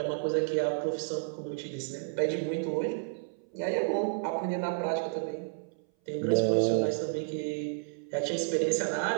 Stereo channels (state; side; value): silent; left; 57 dB below the other